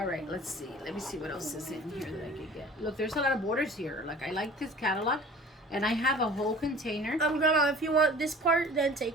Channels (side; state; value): both; normal; correlation 0.44